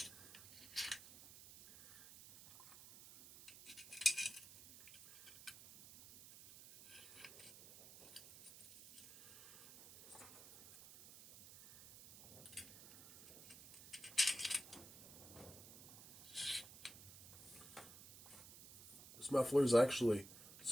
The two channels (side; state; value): right; noise; hiss, 17 dB below the sound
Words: This muffler is actually